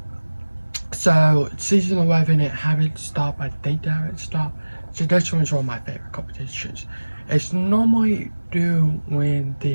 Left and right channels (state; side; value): inverted; both; correlation -1.00